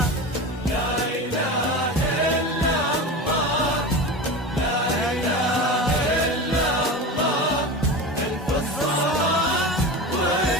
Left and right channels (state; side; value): normal; both; correlation 0.27